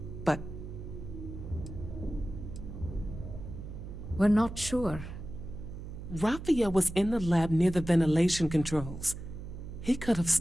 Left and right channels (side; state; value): right; noise; hum, 10 dB below the sound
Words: but... We're not sure. Raphael was in the lab near the ventilation controls. He could have